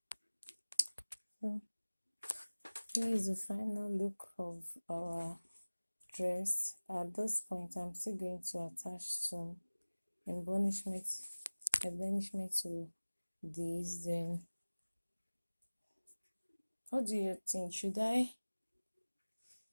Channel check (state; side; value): inverted; both; correlation -1.00